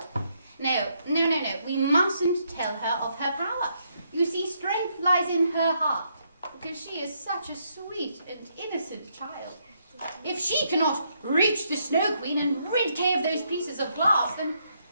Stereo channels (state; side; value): inverted; both; correlation -0.75